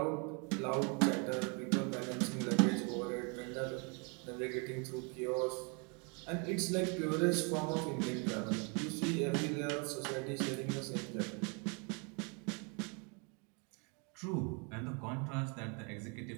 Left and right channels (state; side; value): quieter; left; 34.0 dB